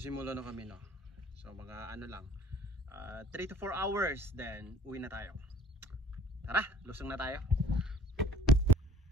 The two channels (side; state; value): both; normal; correlation 0.52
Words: na kami, no. So, mga ano lang, 3 to 4 hours, then uwi na tayo. Tara, lusong na tayo.